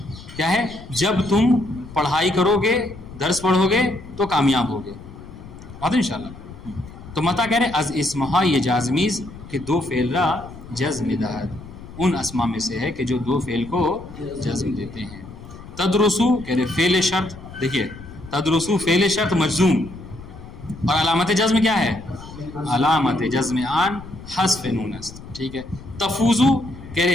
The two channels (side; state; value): left; noise; rumble, 15 dB below the sound